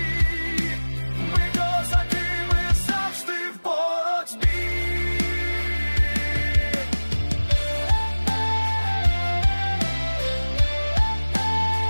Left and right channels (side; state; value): both; inverted; correlation -1.00